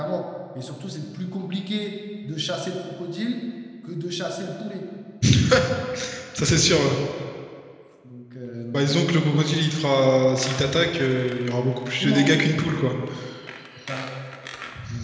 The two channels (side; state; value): both; identical; correlation 1.00